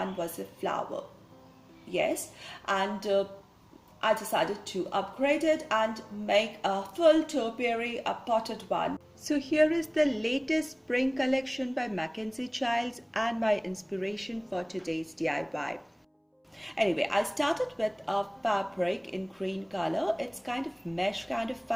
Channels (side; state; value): both; identical; correlation 1.00